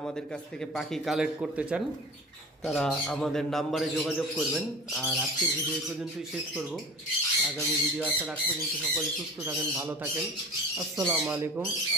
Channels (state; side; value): normal; both; correlation 0.37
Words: কাছ থেকে পাখি কালেক্ট করতে চান তারা আমাদের নাম্বারে যোগাযোগ করবেন। আর আজকের ভিডিও এই পর্যন্তই শেষ করব। আগামী ভিডিও আসার আগ পর্যন্ত সকলে সুস্থ থাকেন, ভালো থাকেন। আসসালামু আলাইকুম,